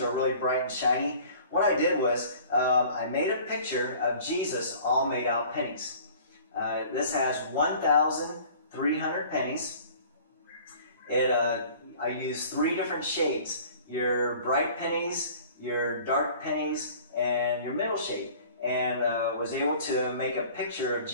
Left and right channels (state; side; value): inverted; both; correlation -0.48